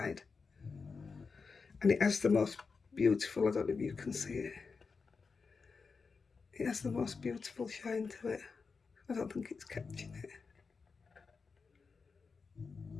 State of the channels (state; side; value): quieter; right; 4.9 dB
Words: And it has the most beautiful, I don't know if you can see it. It has the most beautiful shine to it. I don't think it's catching it.